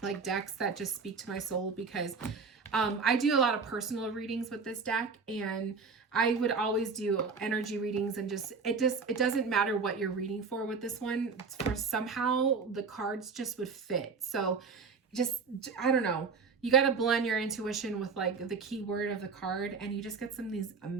like decks that just speak to my soul because I do a lot of personal readings with this deck, and I would always do energy readings, and it doesn't matter what you're reading for with this one. For somehow the cards just would fit. So I don't know. You got to blend your intuition with like the keyword of the card, and you just get some of these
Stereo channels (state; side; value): quieter; left; 5.0 dB